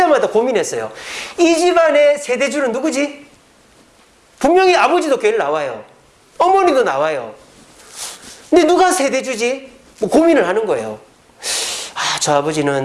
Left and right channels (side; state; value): both; identical; correlation 1.00